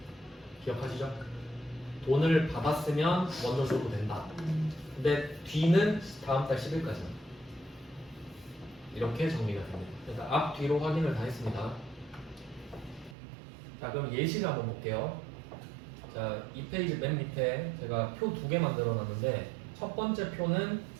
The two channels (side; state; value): left; drops out; at 13.2 s